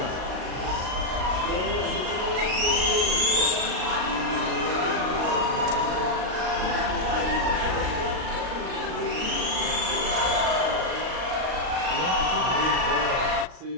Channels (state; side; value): late; left; 38 ms